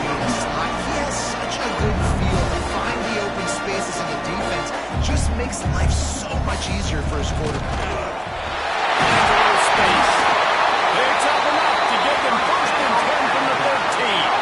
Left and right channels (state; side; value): identical; both; correlation 1.00